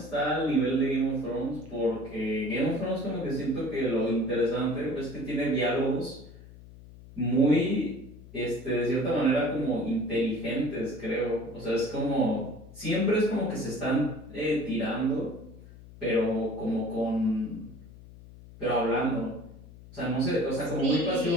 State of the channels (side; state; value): left; noise; hum, 19 dB below the sound